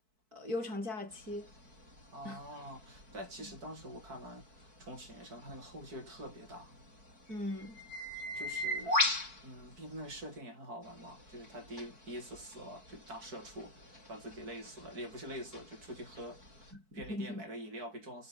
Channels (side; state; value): left; late; 4.6 ms